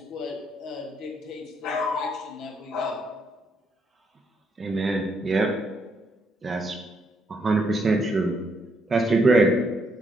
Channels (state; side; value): normal; both; correlation 0.75